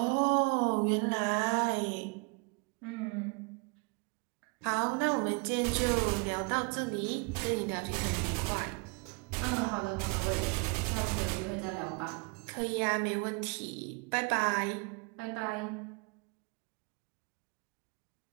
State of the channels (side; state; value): left; quieter; 32.1 dB